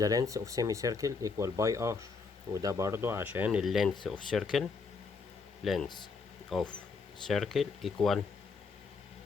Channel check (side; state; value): right; quieter; 4.7 dB